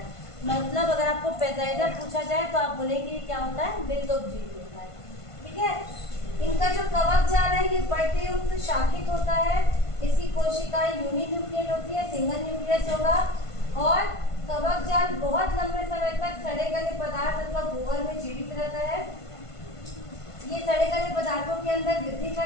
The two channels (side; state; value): right; late; 1.5 ms